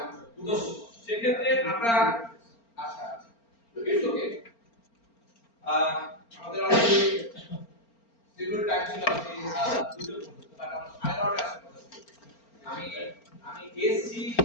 তো সেক্ষেত্রে আমরা আচ্ছা ইটস ওকে আমাদের অলরেডি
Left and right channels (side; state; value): right; late; 4.4 ms